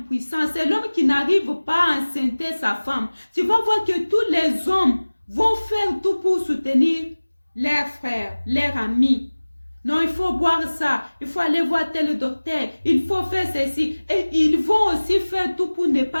C'est l'homme qui n'arrive pas à enceinter sa femme. Tu vas voir que tous les hommes vont faire tout pour soutenir leurs frères, leurs amis. Non, il faut boire ça, il faut aller voir tel docteur, il faut faire ceci. Et ils vont aussi faire tout pour ne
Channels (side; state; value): both; inverted; correlation -1.00